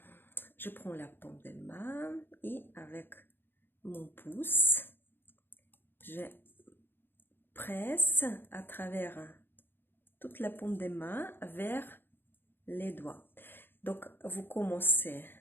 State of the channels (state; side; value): late; right; 0.10 ms